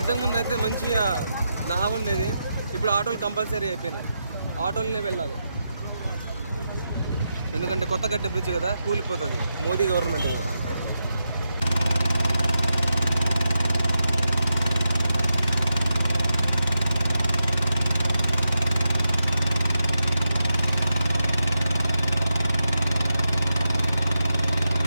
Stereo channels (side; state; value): both; inverted; correlation -0.86